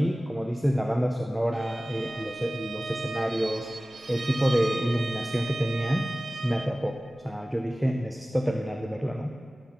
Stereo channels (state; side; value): normal; both; correlation 0.97